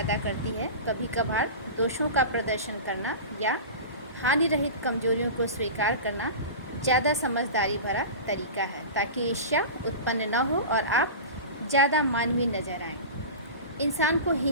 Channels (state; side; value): inverted; both; correlation -0.30